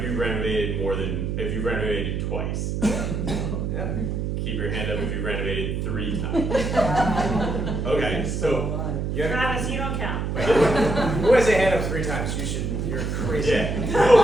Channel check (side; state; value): right; noise; hum, 1 dB below the sound